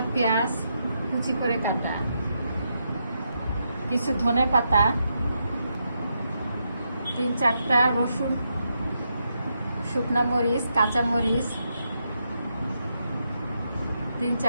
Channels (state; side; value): inverted; both; correlation -0.82